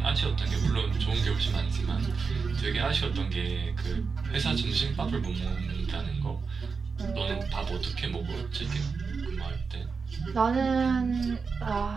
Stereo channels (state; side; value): quieter; left; 5.1 dB